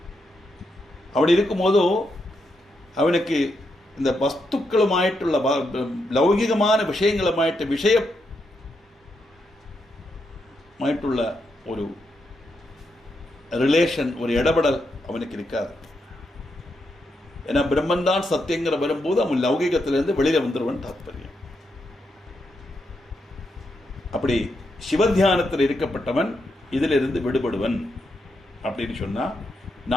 அப்படி இருக்கும்போதோ அவனுக்கு இந்த வஸ்துக்களுமாയിട്ടുള്ള ലൗകികமான விஷயமாയിട്ടുള്ള ஒரு ரிலேஷன், ஒரு இடபடல் அவனுக்கு இருக்காது. ஏன்னா பிரம்மன் தான் சத்தியங்கிற வரும்போது அவன் லௌகிகத்திலிருந்து வெளியில வந்துருவன் தாற்பயம். அப்படி சிவத்தியானத்தில் இருக்கப்பட்டவன் இதிலிருந்து விடுபடுவன் அப்படின்னு சொன்னா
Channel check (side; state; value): both; normal; correlation 0.82